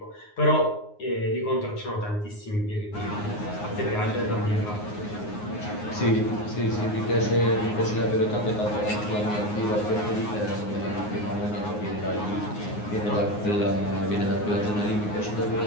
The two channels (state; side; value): late; right; 9.6 ms